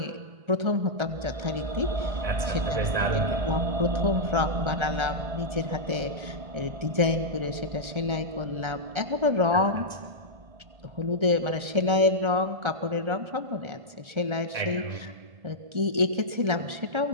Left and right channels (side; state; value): left; late; 1.3 ms